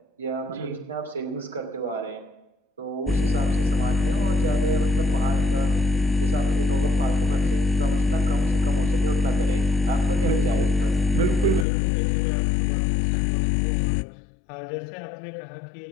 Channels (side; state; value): right; drops out; at 11.7 s